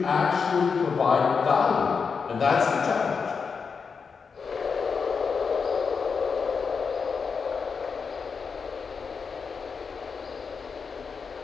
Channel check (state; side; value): quieter; right; 5.5 dB